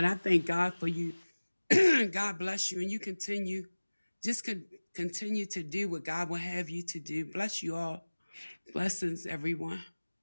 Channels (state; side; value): inverted; both; correlation -1.00